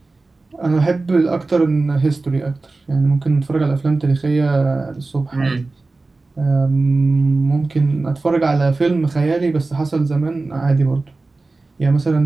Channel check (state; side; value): quieter; left; 3.5 dB